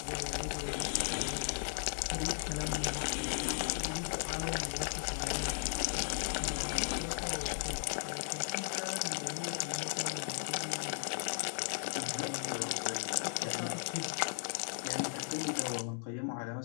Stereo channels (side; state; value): right; silent; digital silence